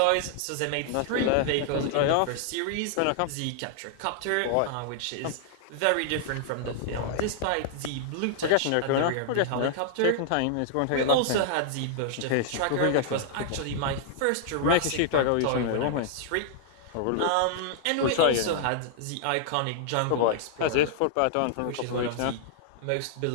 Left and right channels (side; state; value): both; different; correlation -0.01